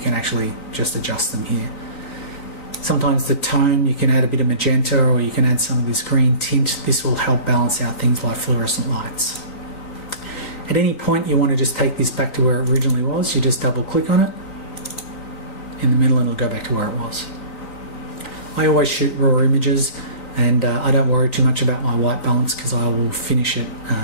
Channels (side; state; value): right; late; 3.9 ms